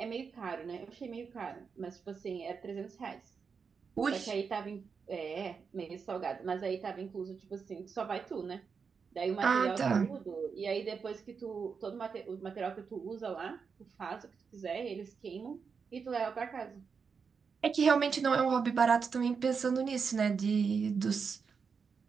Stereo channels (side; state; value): left; quieter; 5.7 dB